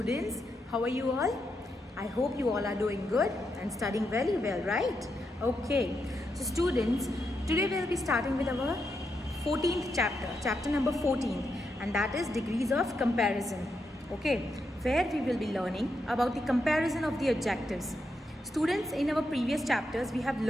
How are you all? I hope you all are doing good and studying very well, right? Okay. So, students, today we'll be starting with our 14th chapter number 14, and that is degrees of comparison. Okay, where we will be learning about the comparison of the adjectives. Students, in our previous chapters, we have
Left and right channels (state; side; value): normal; both; correlation 0.83